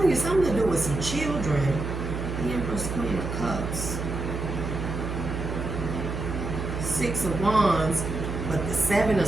you, something to do with some children. The Empress, Queen of Cups. Six of Wands. But the Seven of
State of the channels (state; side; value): noise; right; hum, 4 dB below the sound